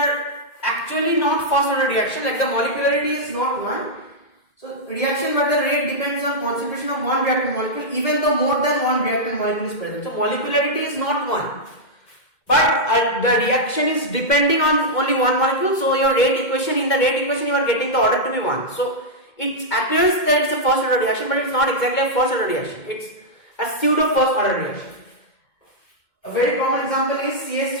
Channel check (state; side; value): late; right; 2.1 ms